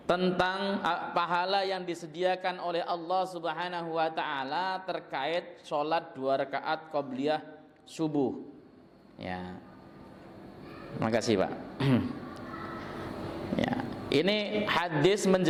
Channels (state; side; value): identical; both; correlation 1.00